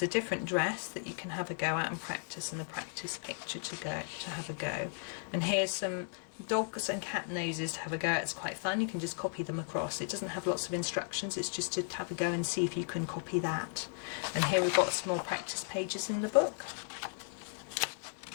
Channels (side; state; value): right; silent; 54 dB below the other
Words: a different dress that you can have a go at and practice, and a practice picture to have a go. And here's some dogs and cat noses to have a go at. It's quite fun. You can just copy them across. It doesn't have lots of instructions. It's just to have a go and see if you can copy that. And here we've got some more practice pages in the book.